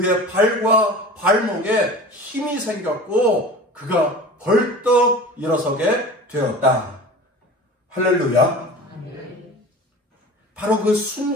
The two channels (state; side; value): normal; both; correlation 0.38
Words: 발과 발목에 힘이 생겼고 그가 벌떡 일어서게 되었다. 할렐루야. 바로 그